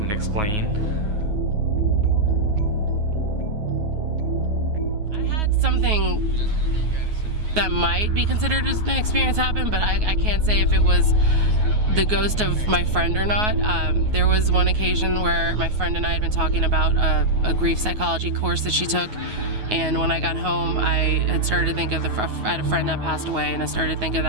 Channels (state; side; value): late; left; 9.4 ms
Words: explain. I had something that might be considered as an experience happen, but I can't say if it was the ghost of my friend or not. There was one occasion where my friend and I had been talking about a grief psychology course that she took, and when I got home, I had started to think of I had a friend that passed away, and I started to think of